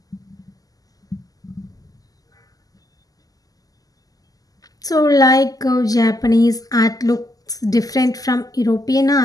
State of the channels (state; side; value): late; right; 0.17 ms